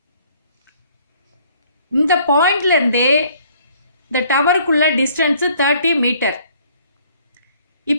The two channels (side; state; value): both; inverted; correlation -0.59